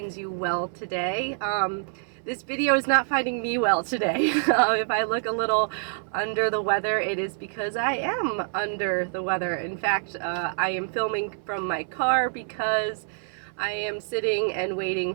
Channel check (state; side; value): silent; left; 61 dB below the other